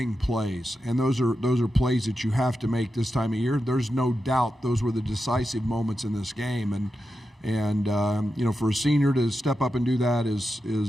plays, and those are plays that you have to make this time of year. There's no doubt those were the decisive moments in this game, and you know, for a senior to step up and do that is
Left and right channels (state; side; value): normal; both; correlation 0.89